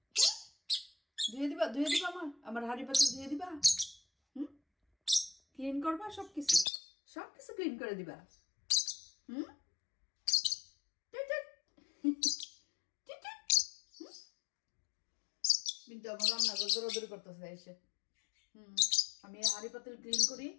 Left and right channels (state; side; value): drops out; right; at 6.7 s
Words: ধুয়ে দিবা? ধুয়ে দিবা আমার হাড়ি পাতিল ধুয়ে দিবা? হুম, ক্লিন করবা? সবকিছু সবকিছু ক্লিন করে দিবা? হুম, কিন্তু আমার রান্নাঘর দৌড়াদৌড়ি করতেছে এসে। আমি হাড়ি পাতিল ক্লিন করি,